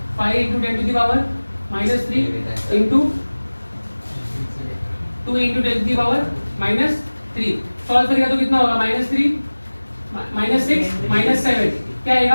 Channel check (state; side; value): inverted; both; correlation -1.00